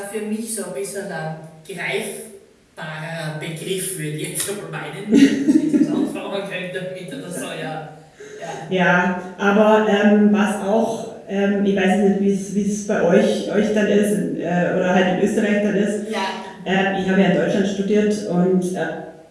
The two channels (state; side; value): identical; both; correlation 1.00